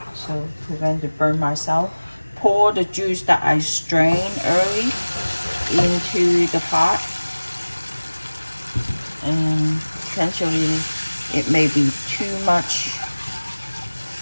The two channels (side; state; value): both; inverted; correlation -1.00